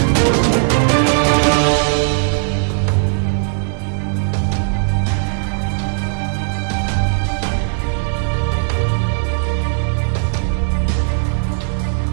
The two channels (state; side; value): silent; left; digital silence